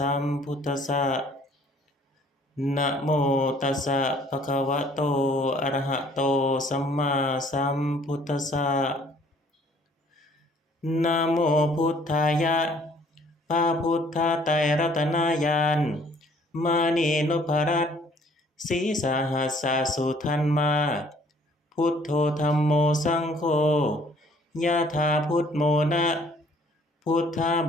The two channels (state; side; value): normal; both; correlation 0.59